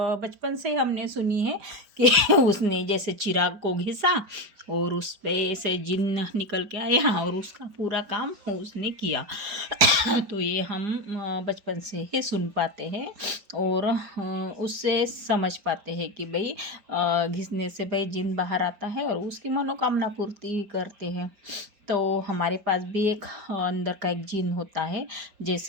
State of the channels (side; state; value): left; late; 4.8 ms